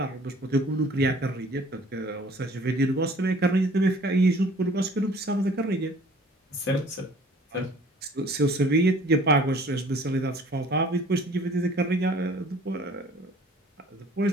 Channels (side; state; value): both; normal; correlation 0.52